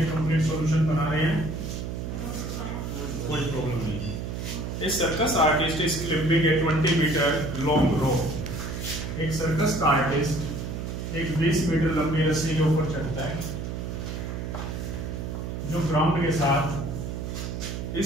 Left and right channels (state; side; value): noise; right; hum, 5 dB below the sound